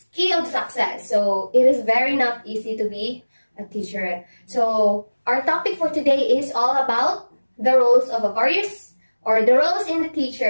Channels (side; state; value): both; inverted; correlation -1.00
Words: key of success. So it is very not easy to be a teacher. So our topic for today is all about the roles of the roles in the